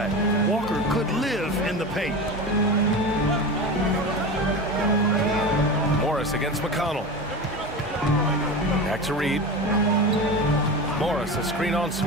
Walker could live in the paint. Morris against McConnell. Back to Reed. Morris, a screen on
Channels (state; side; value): normal; both; correlation 0.27